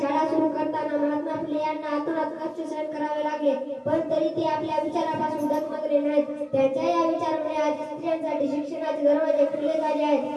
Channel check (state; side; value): identical; both; correlation 1.00